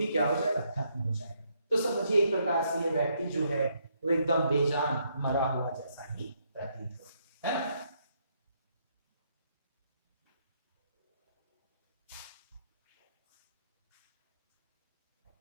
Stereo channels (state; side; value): inverted; both; correlation -0.74